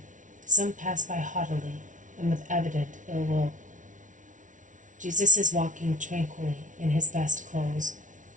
some pass by haughtily and with evident ill will. Jesus is walking tranquilly in his best clothes.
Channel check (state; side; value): late; left; 0.37 ms